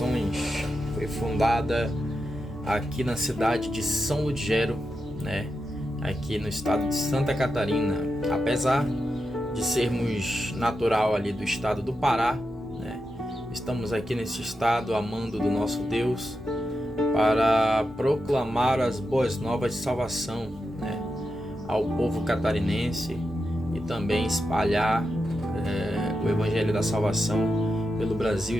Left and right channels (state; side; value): normal; both; correlation 0.88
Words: Foi fundada aqui na cidade de São Ludgero, né? Aqui no estado de Santa Catarina. Apesar de sermos natural ali do estado do Pará, né? Estamos aqui nesse estado amando do nosso Deus para proclamar as boas novas de salvação, né? Ao povo catarinense e também espalhar o evangelho da salvação pelo Brasil